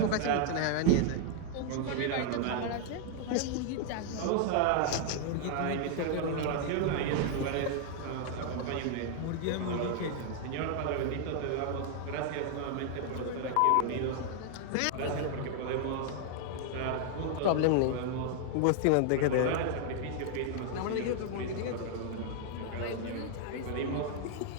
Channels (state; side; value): different; both; correlation 0.00